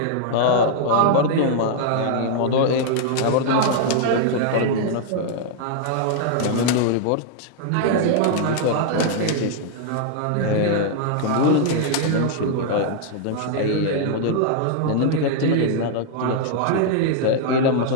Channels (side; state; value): both; different; correlation -0.01